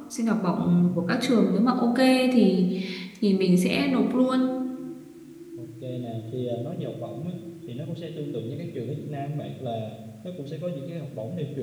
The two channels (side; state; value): both; identical; correlation 1.00